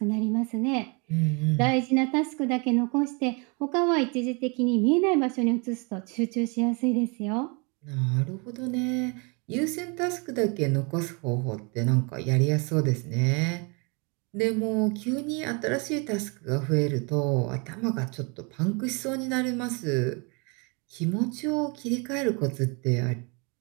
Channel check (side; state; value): left; quieter; 32.0 dB